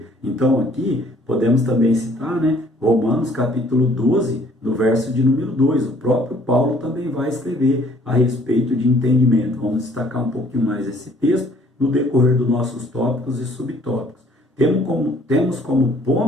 Então aqui podemos também citar, né, Romanos capítulo 12, no verso de número 2. O próprio Paulo também vai escrever a respeito de entendimento. Vamos destacar um pouquinho mais esse texto no decorrer dos nossos tópicos e subtópicos. Temos como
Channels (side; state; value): both; normal; correlation 0.59